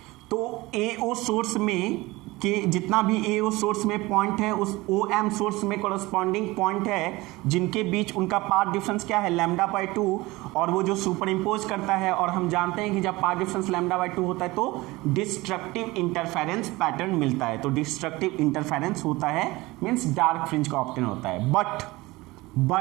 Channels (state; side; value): quieter; left; 21.0 dB